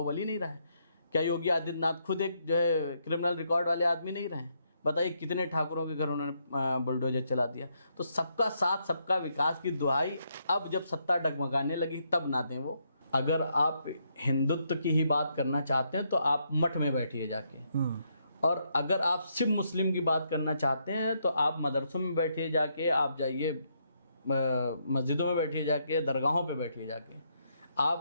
नहीं रहा है? क्या योगी आदित्यनाथ खुद एक जो है क्रिमिनल रिकॉर्ड वाले आदमी नहीं रहे? बताइए कितने ठाकुरों के घर उन्होंने बुलडोजर चला दिया। तो सबका साथ सबका विकास की दुहाई अब जब सत्ता डगमगाने लगी तब ना दें वो। अगर आप हिंदुत्व की ही बात करना चाहते हैं तो आप मठ में बैठिए जाके, और अगर आप सिर्फ मुस्लिम की बात करना चाहते हैं तो आप मदरसों में बैठिए जाके, आप जाइए मस्जिदों में बैठिए जाके, दरगाहों पे बैठिए जाके।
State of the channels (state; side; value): inverted; both; correlation -0.76